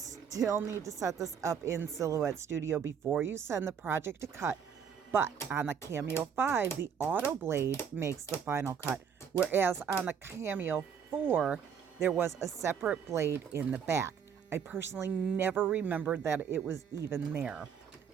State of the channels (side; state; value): left; quieter; 7.3 dB